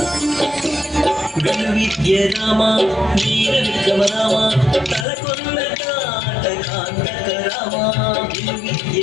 విద్య రామ వీర విక్రమ రామ తలకొల్ల కాంతక రామ విద్య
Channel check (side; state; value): right; drops out; at 5.1 s